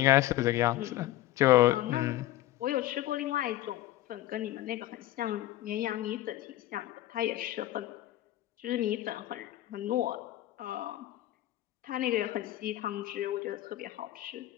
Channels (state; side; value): quieter; right; 14.9 dB